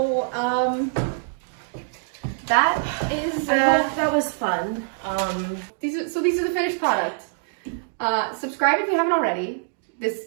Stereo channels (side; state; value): left; silent; digital silence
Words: that is. I hope that was fun. These are the finished product. Subscribe if you haven't already.